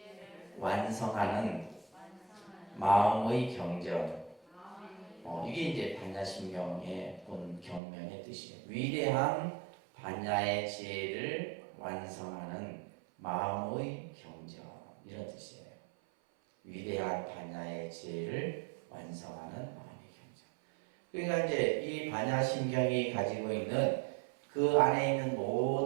완성하는 마음의 경전. 이게 이제 반야신경의 본 경명의 뜻이에요. 위대한 반야의 지혜를 완성하는 마음의 경전 이런 뜻이에요. 위대한 반야의 지혜를 완성하는 마음의 경전. 그러니까 이제 이 반야신경이 가지고 있는 그 안에 있는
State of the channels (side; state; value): left; drops out; at 7.8 s